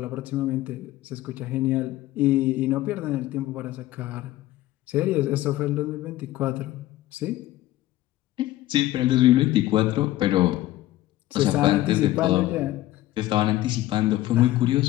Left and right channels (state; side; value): quieter; right; 15.6 dB